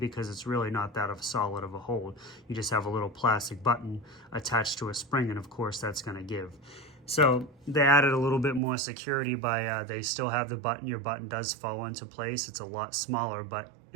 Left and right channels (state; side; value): drops out; left; at 8.6 s